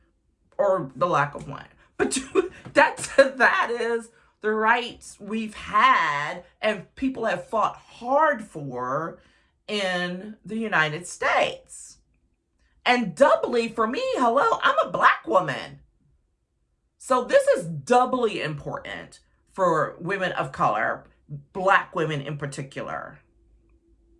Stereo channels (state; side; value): identical; both; correlation 1.00